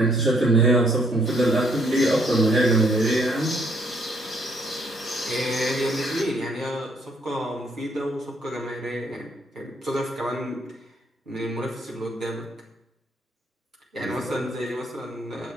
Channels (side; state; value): both; normal; correlation 0.68